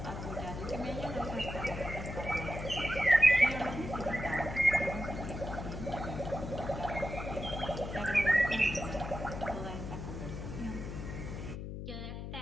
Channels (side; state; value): left; noise; hum, 7 dB below the sound